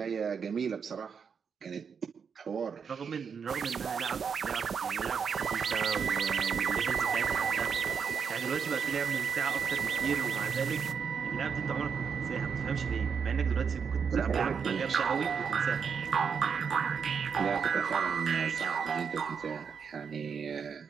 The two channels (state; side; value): quieter; left; 6.4 dB